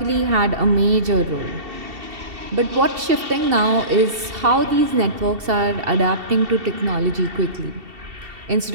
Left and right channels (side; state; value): left; late; 2.7 ms